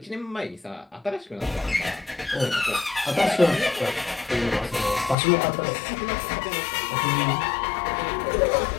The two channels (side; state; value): right; drops out; at 5.2 s